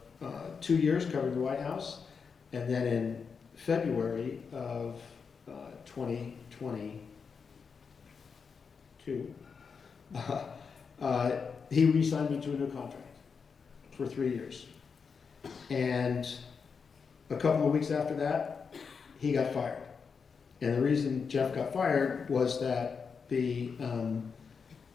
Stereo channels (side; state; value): right; quieter; 5.7 dB